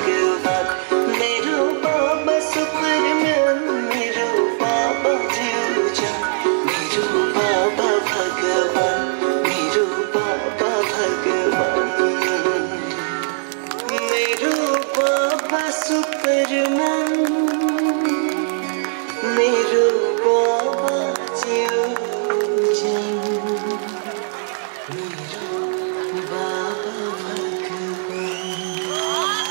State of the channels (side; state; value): left; silent; digital silence